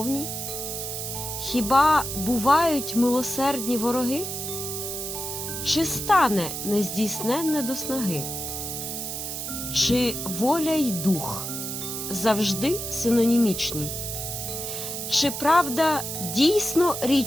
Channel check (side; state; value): right; noise; hiss, 5 dB below the sound